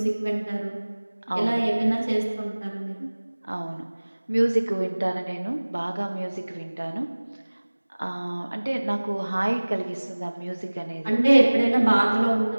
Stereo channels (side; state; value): both; inverted; correlation -1.00